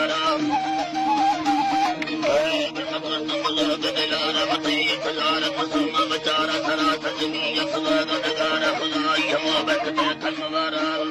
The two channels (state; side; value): identical; both; correlation 1.00